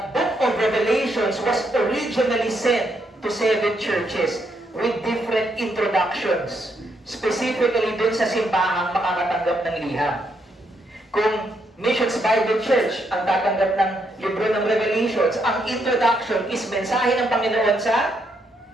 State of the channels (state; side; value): normal; both; correlation 0.77